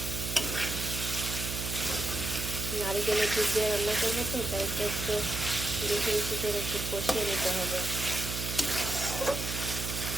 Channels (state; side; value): noise; right; hum, 4 dB below the sound